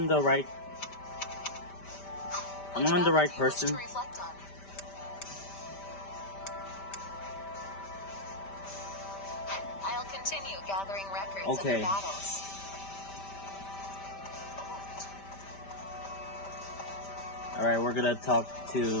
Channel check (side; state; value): right; late; 5.1 ms